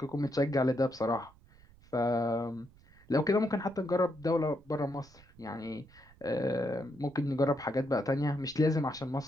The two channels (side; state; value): right; noise; rumble, 25 dB below the sound